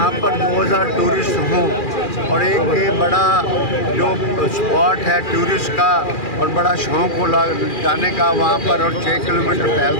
पर 2000 टूरिस्ट हों और एक बड़ा जो स्पॉट है टूरिस्ट का और बड़ा शौक़ हो जाने का वहाँ पर, और 6 किलोमीटर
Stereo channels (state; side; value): late; right; 2.4 ms